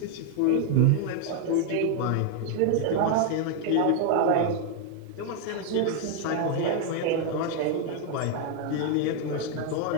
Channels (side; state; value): both; different; correlation 0.00